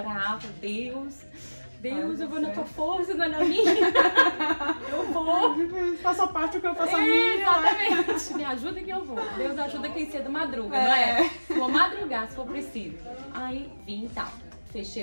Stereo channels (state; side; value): inverted; both; correlation -1.00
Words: Deus, eu vou na tua força, não é na minha. Eu vou. Faça parte do que eu faço a minha. Exatamente. Me ajuda que eu vou. Deus ajuda quem cedo madruga, não é? Vou madrugar se for preciso. Aí vim e tal.